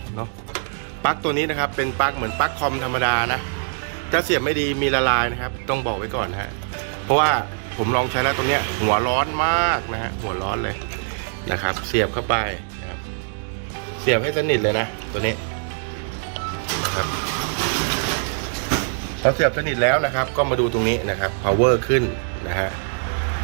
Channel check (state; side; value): silent; left; 61 dB below the other